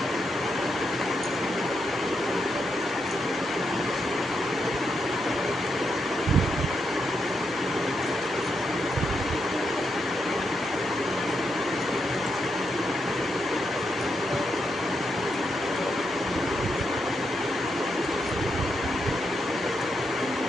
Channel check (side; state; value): both; normal; correlation 0.81